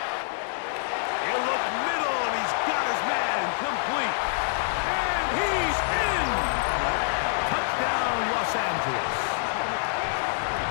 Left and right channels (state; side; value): silent; right; digital silence